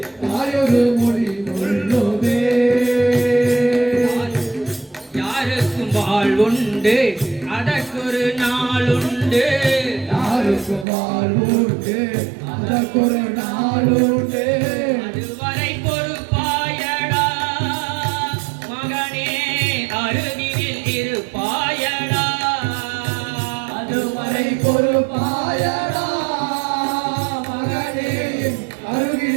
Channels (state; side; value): drops out; left; at 10.9 s